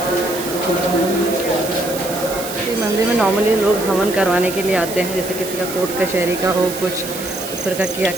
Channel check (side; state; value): right; noise; hiss, 9 dB below the sound